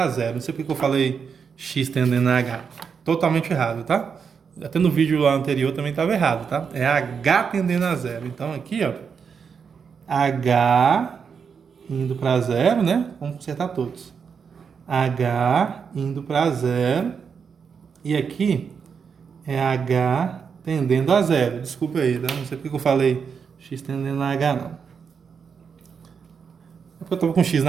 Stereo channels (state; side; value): quieter; left; 6.3 dB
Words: zero. Não sei porque eu falei x tendendo a h. Totalmente errado, tá? Até no vídeo lá anterior também estava errado, tá? É h tendendo a zero. Então, aqui, ó. H indo para zero, né? Vamos consertar todos. H indo para zero. E aqui é H tendendo a zero. Desculpa aí, tá? Não sei porque eu falei x tendendo a H, não. É porque eu estava com x